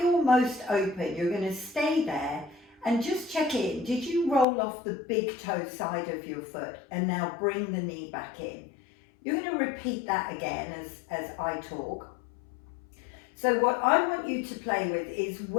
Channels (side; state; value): right; drops out; at 4.5 s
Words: your most open, you're going to stay there and just check in. Did you roll off the big toe side of your foot and now bring the knee back in? You're going to repeat that again as I talk. So what I want you to play with is